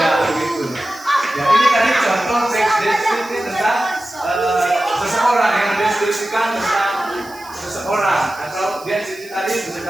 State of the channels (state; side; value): noise; right; hiss, 21 dB below the sound